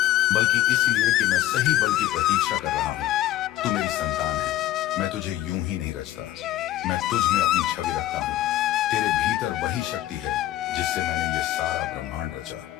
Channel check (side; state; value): right; quieter; 13.9 dB